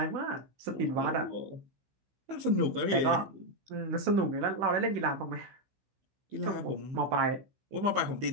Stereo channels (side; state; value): left; late; 15 ms